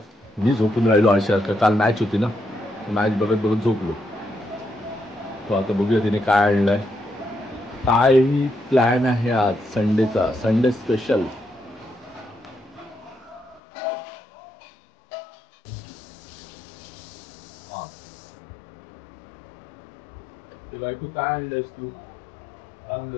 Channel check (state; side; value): drops out; right; at 13.6 s